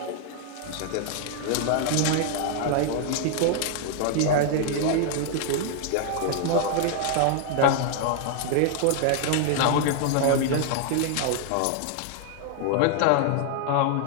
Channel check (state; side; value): different; both; correlation 0.00